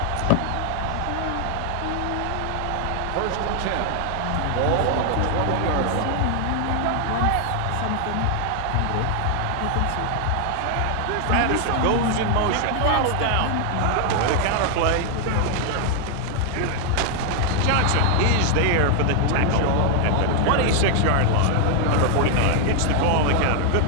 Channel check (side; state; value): both; different; correlation 0.00